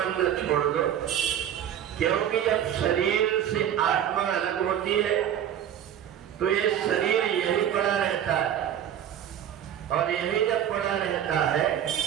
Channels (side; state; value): left; quieter; 10.1 dB